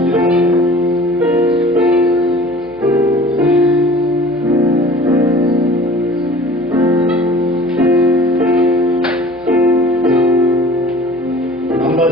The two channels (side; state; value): right; noise; hum, 25 dB below the sound